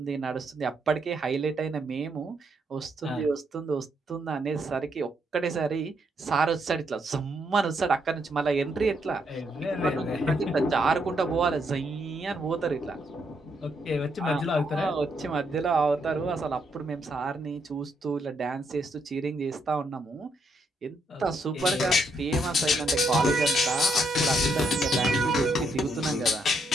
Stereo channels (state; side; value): normal; both; correlation 0.76